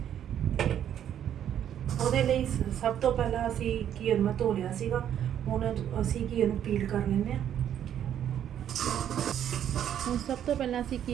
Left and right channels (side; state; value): left; quieter; 10.0 dB